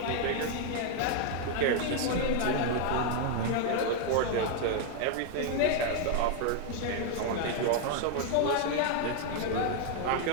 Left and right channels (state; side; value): different; both; correlation 0.00